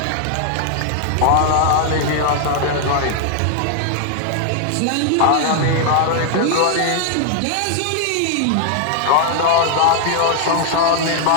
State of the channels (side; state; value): both; different; correlation 0.00